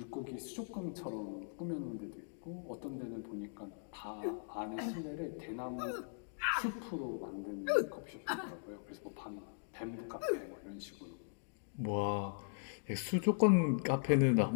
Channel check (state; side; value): silent; right; digital silence